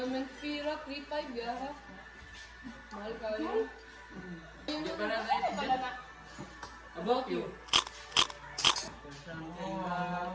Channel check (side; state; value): both; identical; correlation 1.00